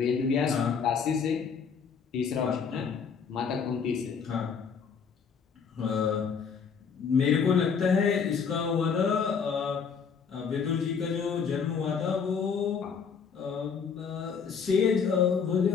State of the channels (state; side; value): quieter; right; 6.2 dB